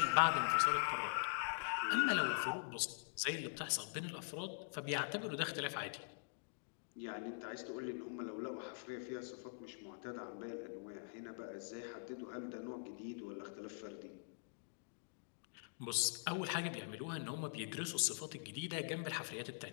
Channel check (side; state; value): right; silent; digital silence